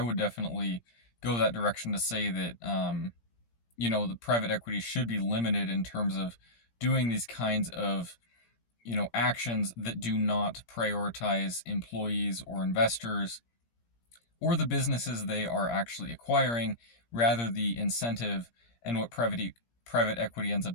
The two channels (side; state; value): right; late; 17 ms